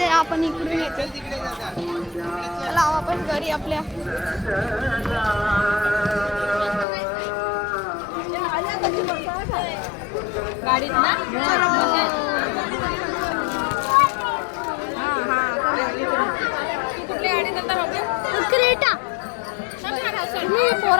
आपण इकडून येतोय. चला वापस घरी आपल्या. गाडीत ना कुठली गाडी जाता बाबा क्रेटा. मी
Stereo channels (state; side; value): drops out; right; at 6.9 s